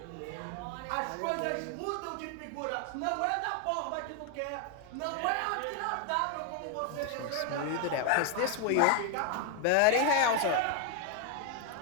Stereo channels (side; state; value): both; different; correlation 0.01